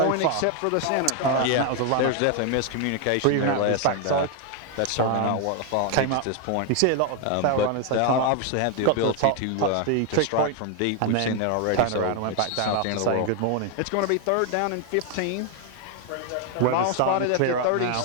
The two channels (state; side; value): different; both; correlation 0.01